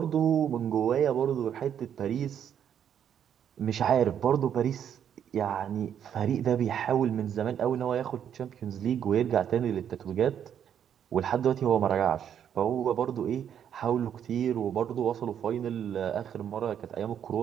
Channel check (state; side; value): quieter; left; 9.0 dB